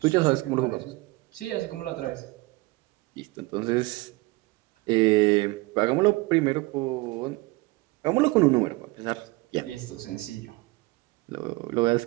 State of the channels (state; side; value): quieter; left; 22.2 dB